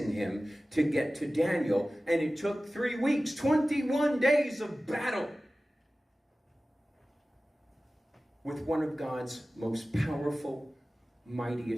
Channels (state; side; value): normal; both; correlation 0.96